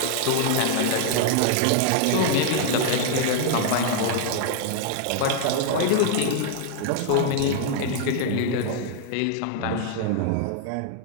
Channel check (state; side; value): different; both; correlation 0.00